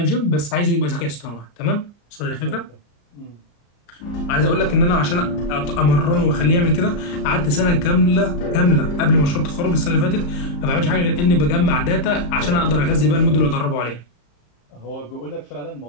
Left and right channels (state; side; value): late; right; 34 ms